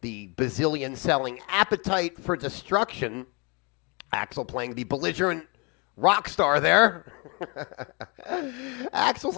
the bazillion-selling Appetite for Destruction. Axl playing the belligerent rock star there. Axl's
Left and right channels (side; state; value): right; quieter; 31.0 dB